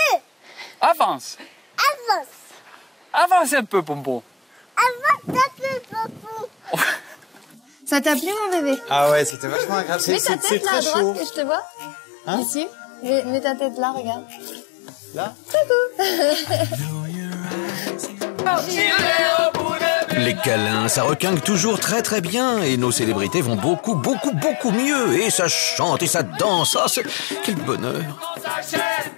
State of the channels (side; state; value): right; drops out; at 9.3 s